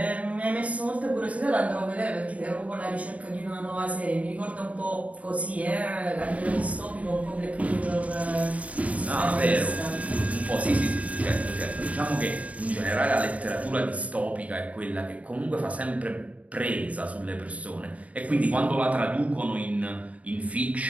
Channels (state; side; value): late; left; 0.068 ms